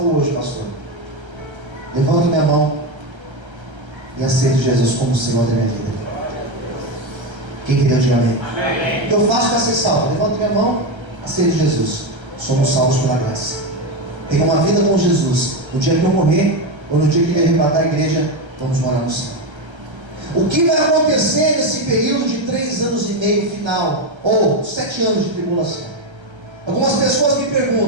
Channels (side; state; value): left; late; 1.3 ms